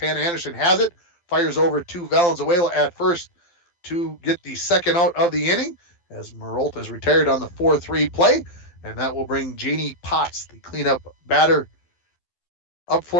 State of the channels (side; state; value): right; late; 12 ms